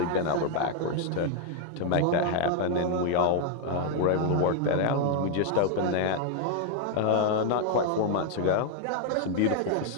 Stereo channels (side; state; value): both; different; correlation 0.00